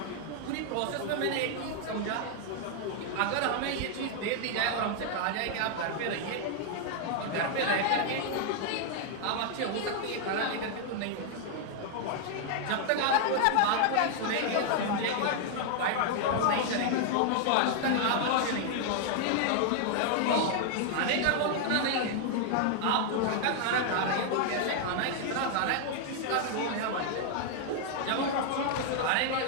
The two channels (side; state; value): both; different; correlation 0.00